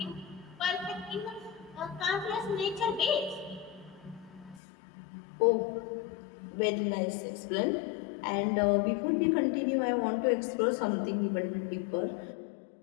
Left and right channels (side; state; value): right; drops out; at 4.6 s